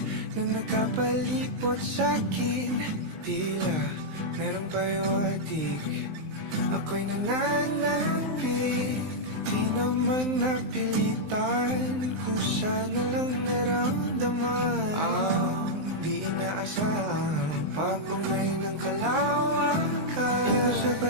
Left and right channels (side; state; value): left; late; 19 ms